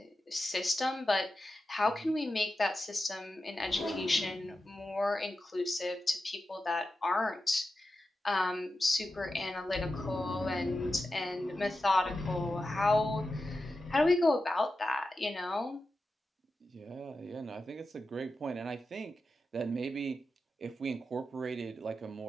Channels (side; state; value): both; normal; correlation 0.91